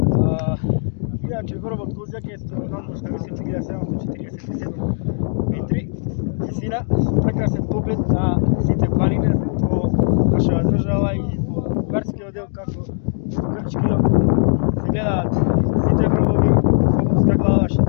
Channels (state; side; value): silent; right; digital silence